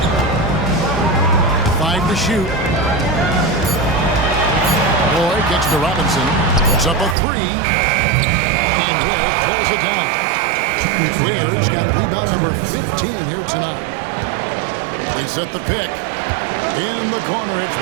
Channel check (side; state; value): left; drops out; at 7.2 s